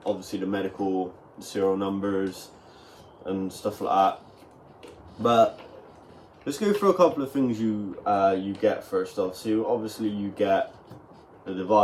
obviously the medical serial numbers and stuff like that. But let's go through a couple of things you get first off. So obviously you get the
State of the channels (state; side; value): identical; both; correlation 1.00